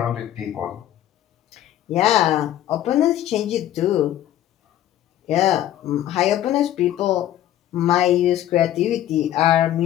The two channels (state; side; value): quieter; right; 12.3 dB